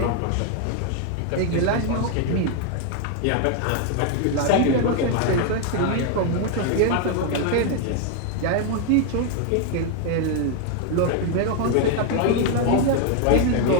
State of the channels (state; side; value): different; both; correlation 0.01